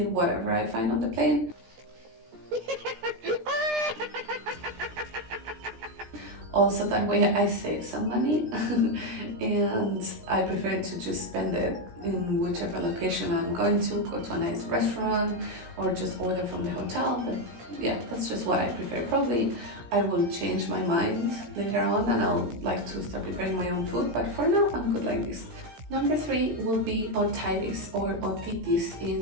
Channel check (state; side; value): late; left; 16 ms